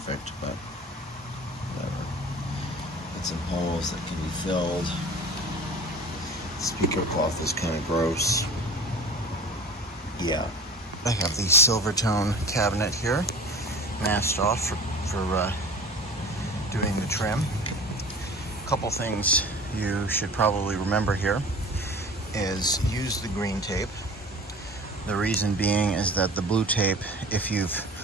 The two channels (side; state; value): both; normal; correlation 0.40